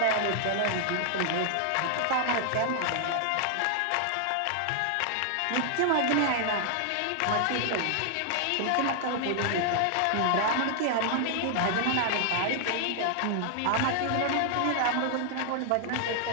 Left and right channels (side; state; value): both; different; correlation 0.00